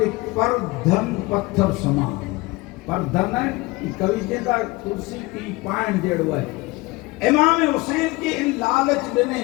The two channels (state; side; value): quieter; right; 22.5 dB